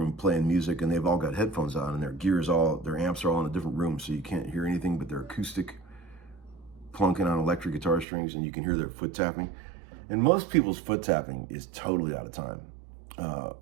playing music, and they've all got headphones on, and their amps are all in a different room, so you can't hear anything but their acoustic plunking on electric guitar strings, and you can hear their foot tapping. And most people's foot tapping is totally out of time.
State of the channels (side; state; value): left; drops out; at 8.1 s